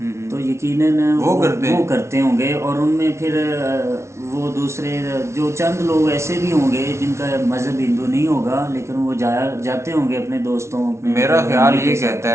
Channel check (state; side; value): late; left; 0.13 ms